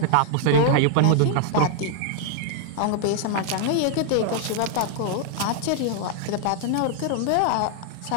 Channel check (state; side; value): different; both; correlation 0.00